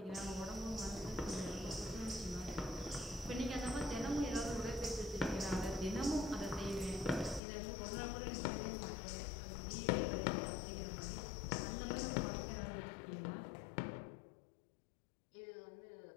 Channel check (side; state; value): right; drops out; at 7.4 s